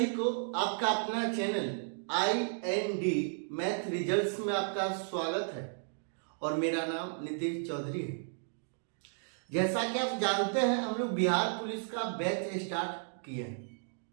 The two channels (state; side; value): silent; left; digital silence